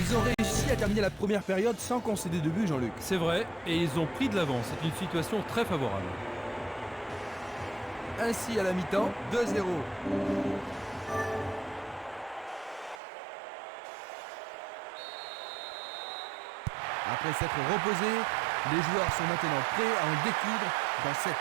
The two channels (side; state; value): left; drops out; at 13.0 s